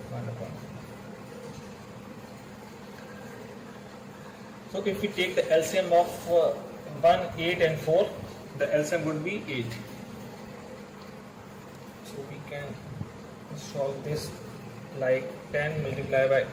upon 4. So if we take the LCM of 1, 8 and 4, the LCM would be 8. So we can solve this like 10 multiplied by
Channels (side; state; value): both; identical; correlation 1.00